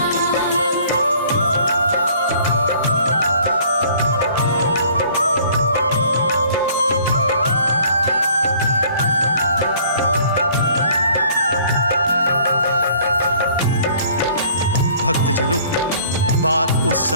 भक्तजनों, बात उस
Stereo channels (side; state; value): both; inverted; correlation -0.56